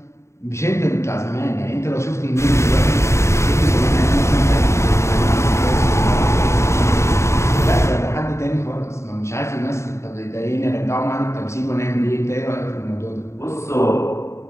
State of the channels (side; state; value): right; late; 0.14 ms